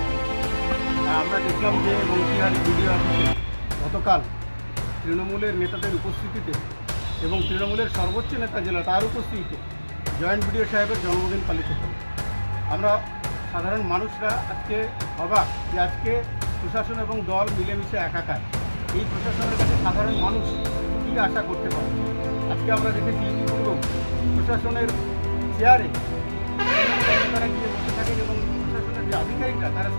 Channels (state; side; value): inverted; both; correlation -1.00